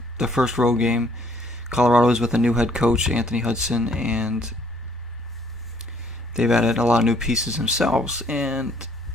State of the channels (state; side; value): normal; both; correlation 0.63